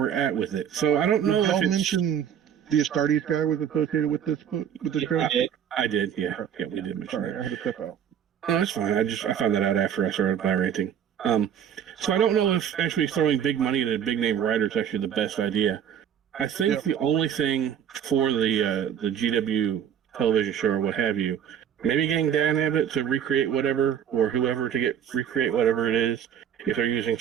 at with it. So I don't know. Did you mention the Astartes guy was associated with this book, with this show? I did. Yeah, we did mention that. I had to step out. No, that's fine. I found that out after I started by ranting. So I don't know if actually throwing big money at a big name writer is actually the best idea. I think the only thing for the GW television show or what have you maybe getting Dan Abbott to recreate whatever, or whoever to recreate whatever it is, if they're using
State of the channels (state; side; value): quieter; left; 8.9 dB